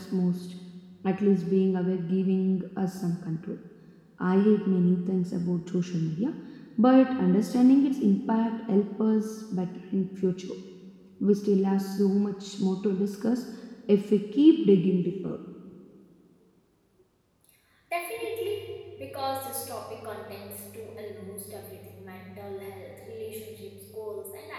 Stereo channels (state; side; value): identical; both; correlation 1.00